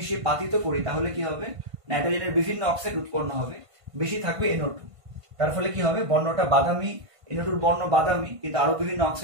পাতিত করি তাহলে কি হবে, নাইট্রোজেনের বিভিন্ন অক্সাইড উৎপন্ন হবে, বেশি থাকবে NO2। তার ফলে কি হবে, বর্ণটা বাদামি, NO2 বর্ণ বাদামি, কিন্তু আরো বিভিন্ন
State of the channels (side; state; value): left; late; 1.5 ms